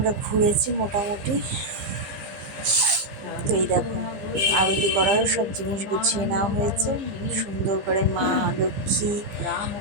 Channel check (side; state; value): left; late; 15 ms